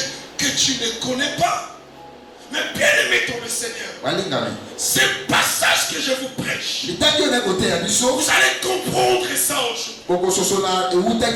que tu ne connais pas. Mais bien aimé ton le Seigneur, ce passage que je vous prêche, vous allez comprendre ça aujourd'hui.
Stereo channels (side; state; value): both; identical; correlation 1.00